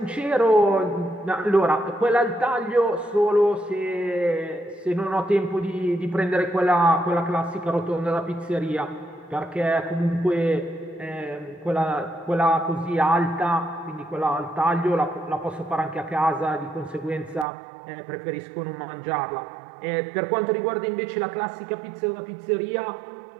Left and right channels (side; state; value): left; drops out; at 17.4 s